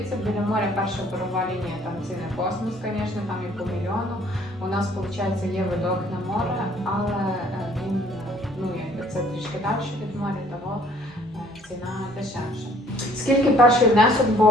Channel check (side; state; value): both; normal; correlation 0.58